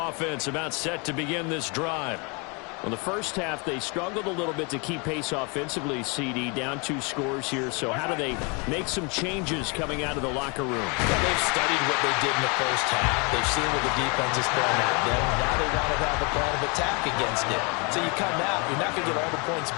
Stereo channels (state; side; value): quieter; right; 31.8 dB